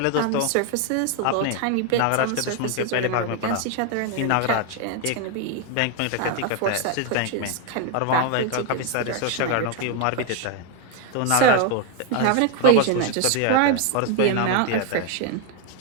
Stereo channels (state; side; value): different; both; correlation 0.01